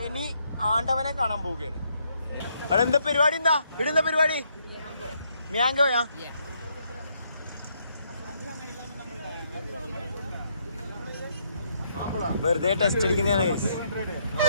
ആണ്ടവനെ കാണാൻ പോവുകയാണ്. അവിടെ എന്താ പരിപാടി? ഇടുന്ന പരിപാടി മ്യാങ്കോയാ? വെറുതെ ടെസ്റ്റ് അടിക്കുന്നതാണ്.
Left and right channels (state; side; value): inverted; both; correlation -0.74